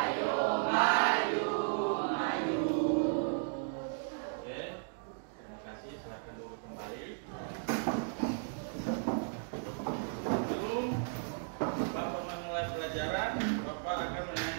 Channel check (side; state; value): left; silent; digital silence